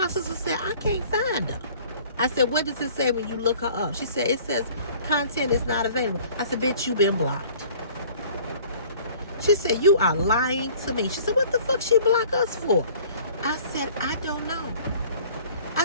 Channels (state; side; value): inverted; both; correlation -0.51